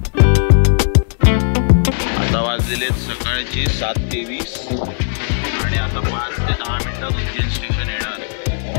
सकाळची 7:23 आणि आता 5 ते 10 मिनिटात उज्जैन स्टेशन येणार.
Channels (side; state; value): right; silent; digital silence